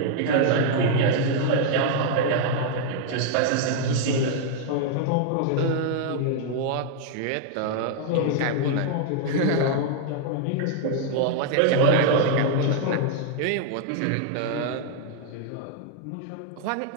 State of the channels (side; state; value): both; different; correlation 0.00